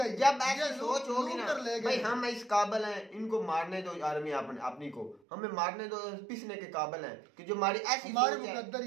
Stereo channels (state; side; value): drops out; left; at 5.2 s